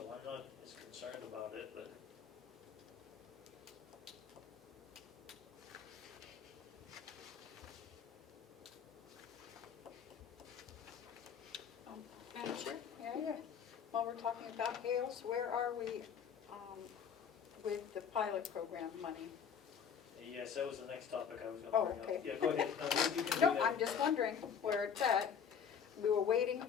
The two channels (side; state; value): right; quieter; 7.4 dB